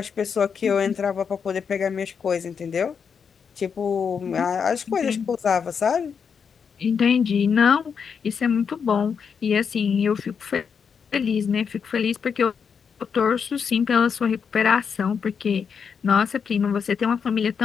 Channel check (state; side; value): quieter; right; 6.5 dB